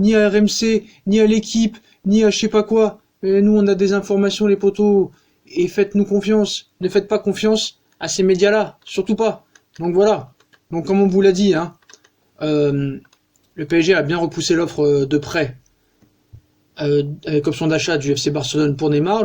à RMC, ni à l'équipe, ni à je sais pas quoi. Et nous on a des informations les potos. Et faites-nous confiance. Ne faites pas confiance à ces médias-là, surtout pas. Donc voilà. Donc comme on vous l'a dit, hein, le PSG a bien repoussé l'offre de prêt avec option d'achat du FC Barcelone pour Neymar.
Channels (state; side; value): identical; both; correlation 1.00